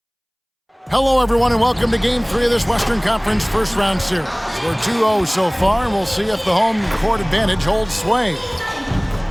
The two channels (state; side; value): identical; both; correlation 1.00